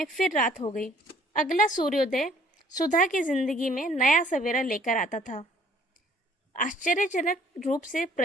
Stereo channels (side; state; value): both; normal; correlation 0.60